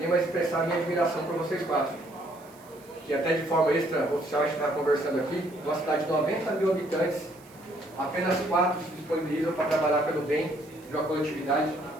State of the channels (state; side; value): noise; right; hiss, 26 dB below the sound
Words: mas expressar a minha admiração por vocês quatro. Que até de forma extra-oficial a gente está conversando aqui, numa cidade de 90 mil habitantes, apenas 4 se disponibilizam para trabalhar pelo bem de uma coletividade,